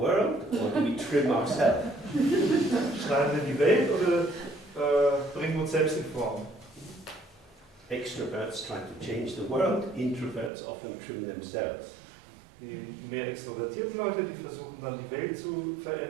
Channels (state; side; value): drops out; left; at 10.5 s